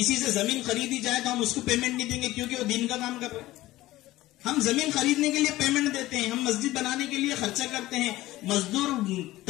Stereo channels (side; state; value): right; quieter; 16.8 dB